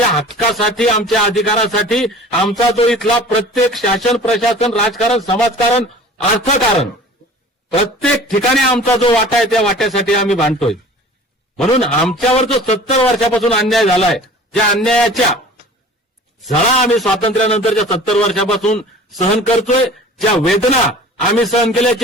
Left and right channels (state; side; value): normal; both; correlation 0.44